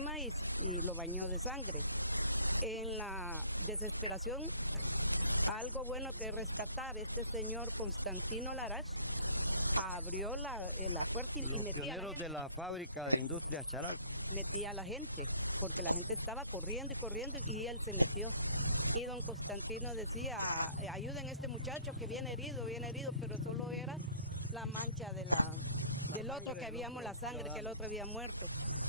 y lo bañó de sangre. En la desesperación, algo bueno que rescatar, este señor Constantino Larach abrió la puerta y Los metía a la pioneros gente. de la fábrica de Industrias Charalco. Metía a la gente, porque la gente estaba corriendo y corriendo y él se metió. Y don Constantino decía, ayuden a este muchacho que viene herido, pero solo era la mancha del otro que habíamos, la sangre que el otro había muerto.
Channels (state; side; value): inverted; both; correlation -0.54